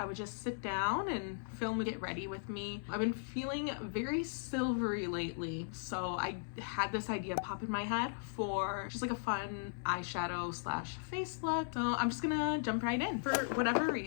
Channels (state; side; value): silent; right; digital silence